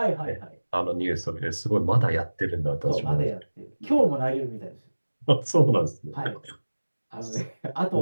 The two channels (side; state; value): both; inverted; correlation -1.00